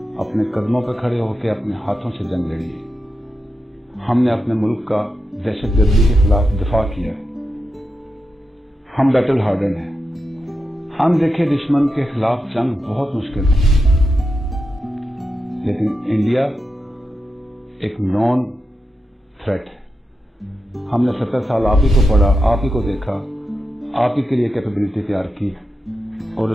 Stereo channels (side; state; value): both; normal; correlation 0.88